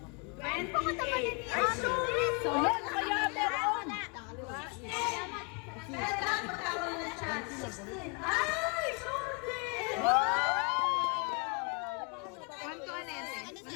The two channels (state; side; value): quieter; right; 33.9 dB